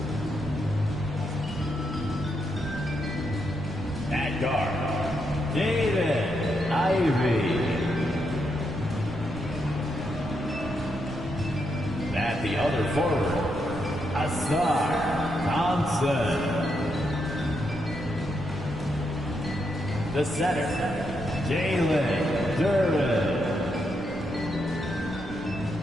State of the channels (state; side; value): noise; right; rumble, 15 dB below the sound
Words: At guard, David Ivey. At the other forward, Asar Thompson. The center, Jalen Duren.